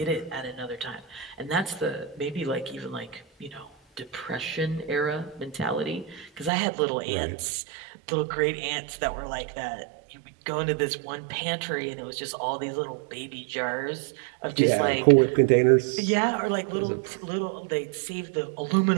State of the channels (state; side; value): drops out; left; at 6.5 s